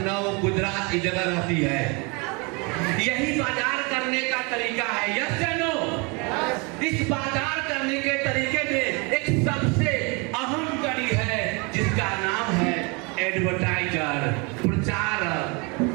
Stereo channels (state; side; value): quieter; left; 30.2 dB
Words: गुजरात की जगह रहती है। यही बाजार करने का तरीका है, यस या नो? इस बाजार करने के तरीके में एक सबसे अहम कड़ी है जिसका नाम है एडवर्टाइजर, प्रचारक।